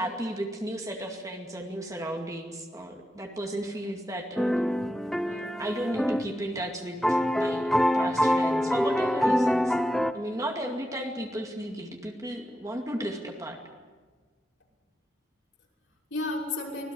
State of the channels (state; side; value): normal; both; correlation 0.87